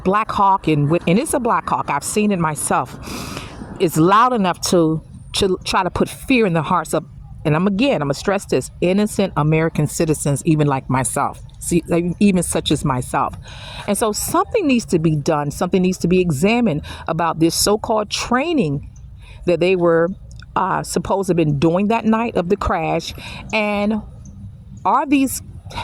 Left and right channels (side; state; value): both; identical; correlation 1.00